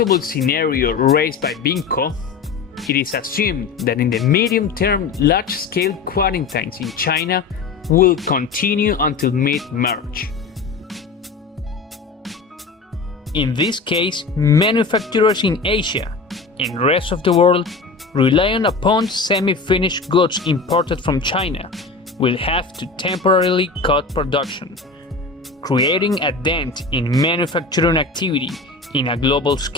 scenario raised by BIMCO, it is assumed that in the medium term large-scale quarantines in China will continue until mid-March. In this case, manufacturers in Asia and rest of the world relying upon semi-finished goods imported from China will have to temporarily cut production, creating a dent in manufacturing activity in a global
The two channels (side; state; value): right; quieter; 4.2 dB